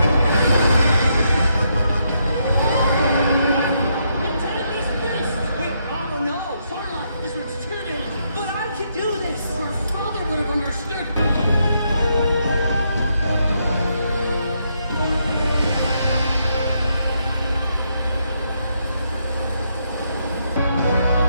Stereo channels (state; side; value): inverted; both; correlation -0.78